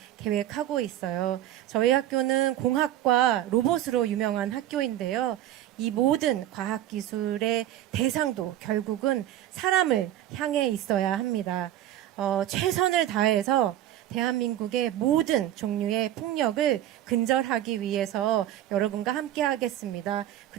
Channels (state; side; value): quieter; left; 12.7 dB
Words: 계획하고 있어요. 저희 학교는 공학과 로봇으로 유명한 학교인데요. 이 모든 과학기술의 대상도 결국은 사람을 향해 있어야 합니다. 최선을 다해서 대한민국의 모든 종류의 폭력을 근절하기 위해서 여러분과 함께 하겠습니다.